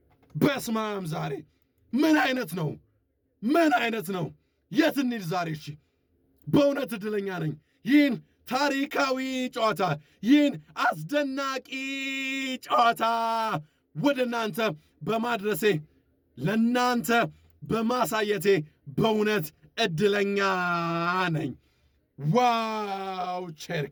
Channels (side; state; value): both; identical; correlation 1.00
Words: በስማም ዛሬ ምን አይነት ነው? የት እንሂድ ዛሬ? እሺ በእውነት እድለኛ ነኝ ይህን ታሪካዊ ጨዋታ፣ ይህን አስደናቂ ጨዋታ ወደ እናንተ በማድረሴ ለእናንተ በማሳየቴ በእውነት እድለኛ ነኝ። ዋው